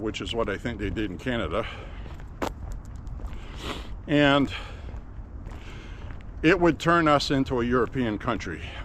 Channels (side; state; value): both; identical; correlation 1.00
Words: is what I think they did in Canada. And it would turn us into a European country.